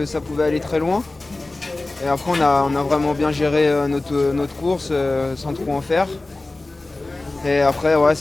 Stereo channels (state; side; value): quieter; right; 3.0 dB